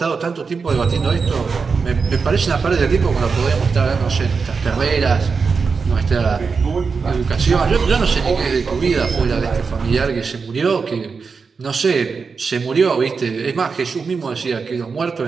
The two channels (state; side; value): quieter; left; 5.1 dB